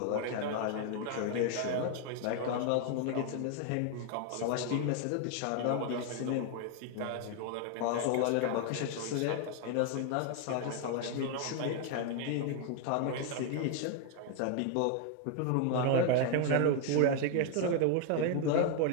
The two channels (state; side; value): different; both; correlation 0.01